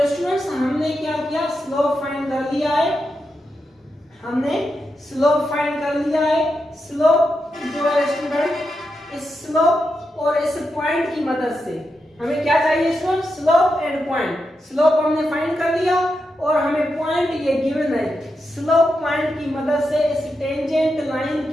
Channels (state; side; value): normal; both; correlation 0.86